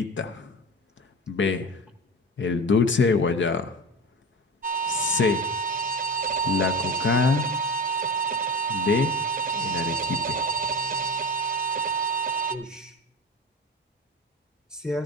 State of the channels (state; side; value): normal; both; correlation 0.28